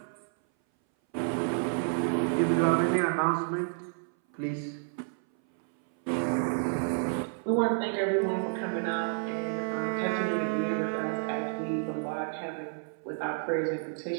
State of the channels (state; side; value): silent; left; 58 dB below the other